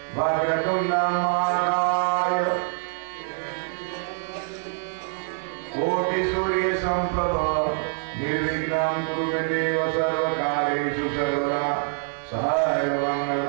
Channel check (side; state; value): left; silent; 62 dB below the other